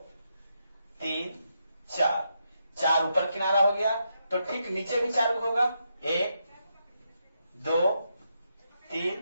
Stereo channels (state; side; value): inverted; both; correlation -0.82